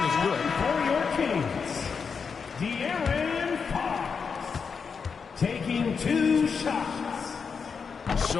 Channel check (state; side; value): quieter; right; 5.8 dB